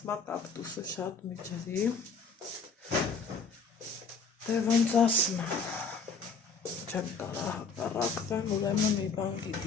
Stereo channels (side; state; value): right; quieter; 4.7 dB